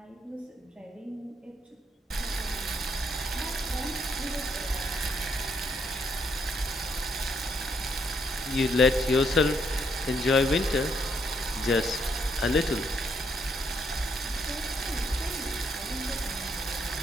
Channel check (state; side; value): normal; both; correlation 0.73